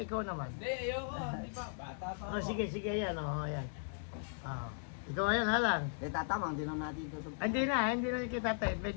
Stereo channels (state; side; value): silent; right; digital silence